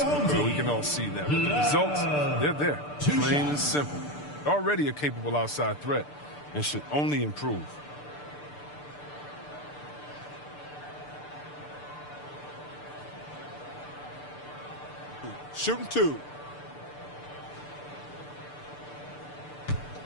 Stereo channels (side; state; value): right; late; 6.8 ms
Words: bro. We can all see that. But the results, they're there. Plain and simple. Already a capable outside threat and should only improve. Shooting 2.